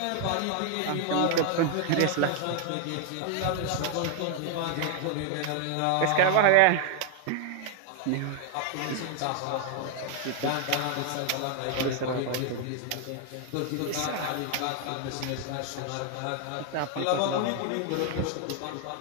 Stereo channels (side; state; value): both; different; correlation 0.00